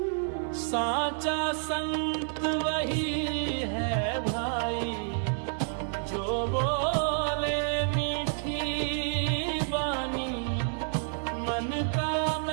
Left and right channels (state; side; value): silent; left; 58 dB below the other